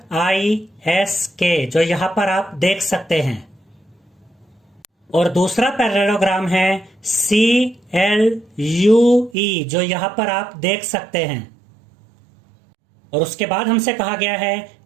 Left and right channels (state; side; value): drops out; left; at 9.3 s